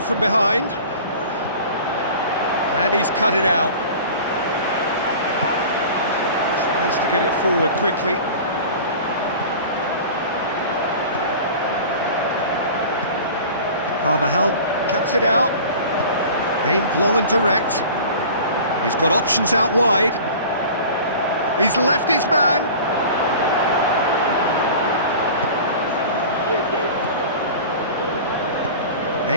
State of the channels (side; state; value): both; inverted; correlation -0.39